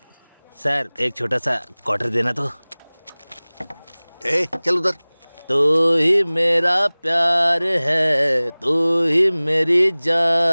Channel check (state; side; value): inverted; both; correlation -1.00